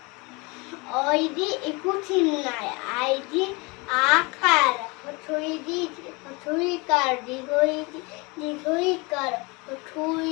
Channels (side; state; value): right; quieter; 27.1 dB